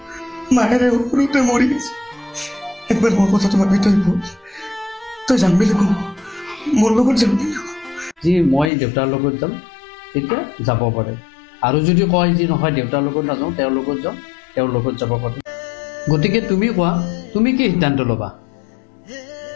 মায়েৰে সৰুতে মৰি গৈছে একবাৰ মোৰ কথা তোমাক তই তই যাম বুলি কওঁ মোৰ লগত যাম বুলি যি মই দেউতাৰ লগত যাম তেতিয়া যাব পাৰে আৰু যদি কয় যি নহয় দেউতাৰ লগত নাযাওঁ তেওঁৰ লগত যাওঁ তেওঁৰ লগত যাব পাৰে গতিকে তুমি কোৱা তুমি কি সিদ্ধান্ত ল'বা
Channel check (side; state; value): right; drops out; at 8.7 s